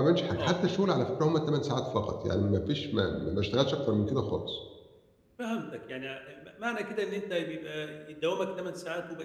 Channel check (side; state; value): both; identical; correlation 1.00